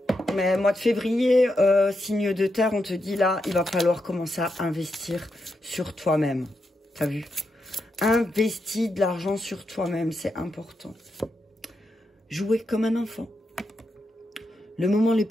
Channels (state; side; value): normal; both; correlation 0.85